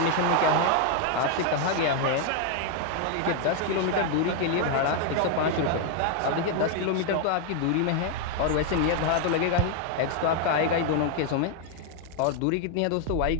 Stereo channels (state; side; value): different; both; correlation 0.00